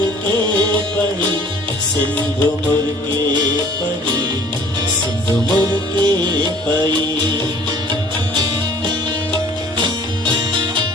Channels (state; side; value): normal; both; correlation 0.52